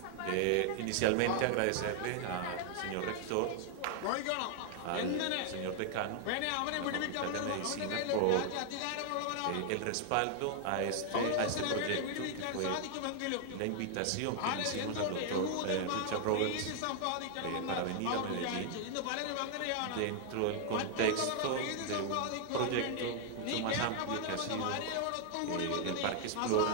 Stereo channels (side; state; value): both; different; correlation 0.00